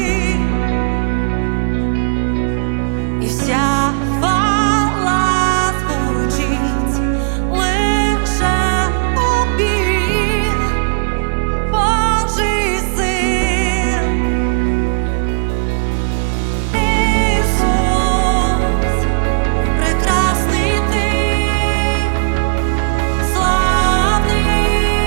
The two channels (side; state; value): left; silent; digital silence